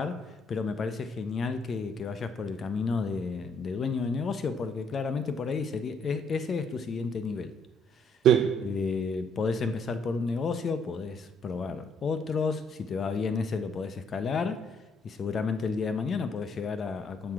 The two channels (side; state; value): both; normal; correlation 0.68